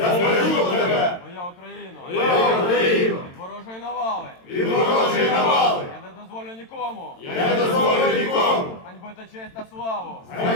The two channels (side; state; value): right; late; 22 ms